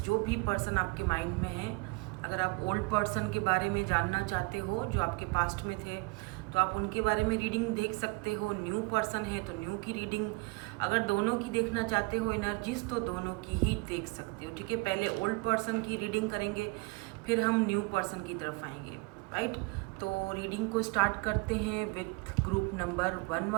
भी पर्सन आपके माइंड में है। अगर आप ओल्ड पर्सन के बारे में जानना चाहते हो जो आपके पास्ट में थे तो आप उनके बारे में रीडिंग देख सकते हो। न्यू पर्सन है तो न्यू की रीडिंग, अगर दोनों की देखना चाहते हो एनर्जीज तो दोनों की ही देख सकते हो। ठीक है, पहले ओल्ड पर्सन की रीडिंग करेंगे, फिर हम न्यू पर्सन की तरफ आएंगे। राइट, तो रीडिंग को स्टार्ट करते हैं विथ ग्रुप नंबर 1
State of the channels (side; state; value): left; quieter; 27.1 dB